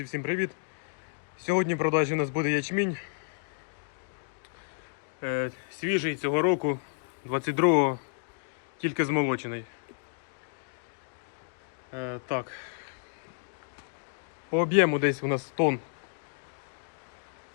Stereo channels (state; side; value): silent; right; digital silence